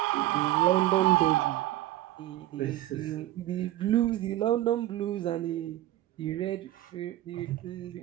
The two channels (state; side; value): quieter; left; 14.7 dB